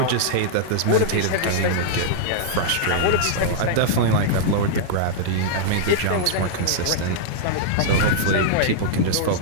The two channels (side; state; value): both; different; correlation -0.02